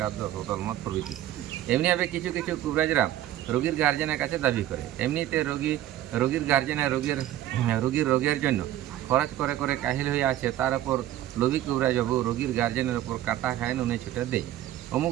10 বোতল মদ প্রভৃতি। এমনিভাবে কিছু কবিরাজরা রোগীর গার্জেনের কাছে দাবি করে। এমনিতে রোগীর গার্জেনের রোগীর রোগের জন্য খরচ করে কাহিল হয়ে আছে, তার উপর লোভী কবিরাজবাবু রোগীর গার্জেনের ওপর কাটা খায়, নুনে ছুটে দেয়, অমুক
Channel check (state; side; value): quieter; left; 13.2 dB